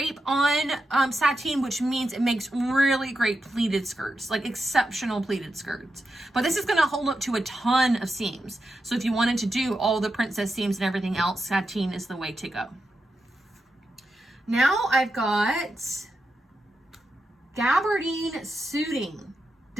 on sateen, which means it makes really great pleated skirts, like exceptional pleated skirts. But this is going to hold up to a ton of seams. So if you wanted to do all the princess seams and everything else, sateen is the way to go. Now I've got gabardine suiting.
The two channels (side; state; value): both; normal; correlation 0.88